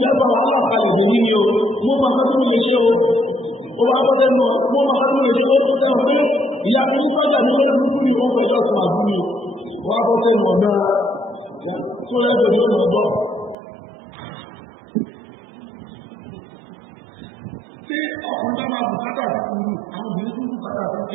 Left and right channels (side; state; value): left; drops out; at 13.6 s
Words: wàhálà kalẹ̀ lè ní o, mo máa fẹ́ tó lè ṣe o. Ó wá bọ́ lẹ́nu mo máa fẹ́ tó lè ṣe o tó tẹ́wọ̀n pé ìyá mi ní sọ́jà ní ọdún kúrú ní ọkọ̀ ìjọ fún àbúrò. Ó wá bọ́ sẹ́nu ọ̀nà tó lẹ́gbẹ̀ẹ́ ní ọ̀nà ọ̀gbọ́. Tí ọkùnrin bá máa bùkátà fún sùúrù, àwọn obìnrin tún bùkátà fún